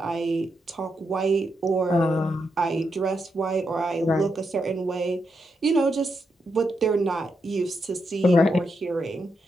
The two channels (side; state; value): both; normal; correlation 0.83